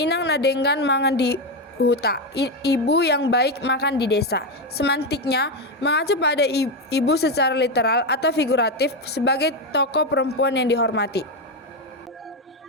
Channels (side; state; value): both; normal; correlation 0.10